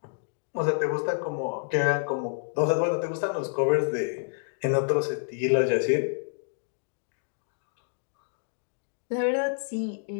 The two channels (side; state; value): right; silent; digital silence